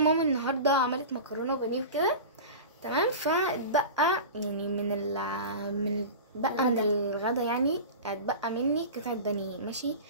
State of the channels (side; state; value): both; inverted; correlation -0.31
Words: النهارده عملت مكرونه وبانيه وكده تمام، فاتبقى يعني من الغدا يعني اتبقى مني قطعه بانيه ماشي.